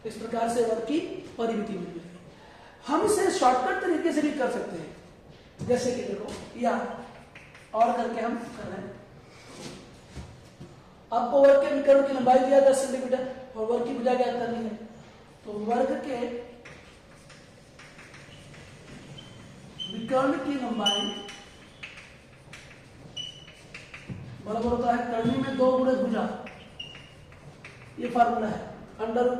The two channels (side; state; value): both; identical; correlation 1.00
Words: इस प्रकार से वर्ग की परिमिति मिल गई। हम इसे शॉर्टकट तरीके से भी कर सकते हैं, जैसे कि देखो या और करके हम कर रहे हैं। आपको वर्ग के विकर्ण की लंबाई दिया 10 सेंटीमीटर और वर्ग की भुजा ज्ञात करनी है, तो वर्ग के विकर्ण की लंबाई बराबर होता है कर्णी में 2 गुणे भुजा, ये फार्मूला है,